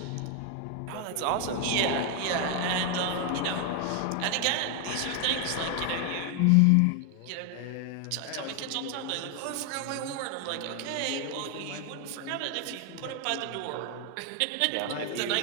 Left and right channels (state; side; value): different; both; correlation 0.01